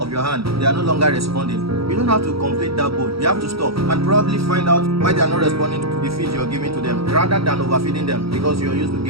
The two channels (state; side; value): late; left; 0.76 ms